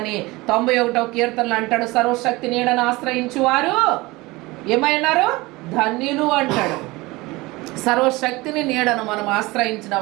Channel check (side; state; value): left; quieter; 21.8 dB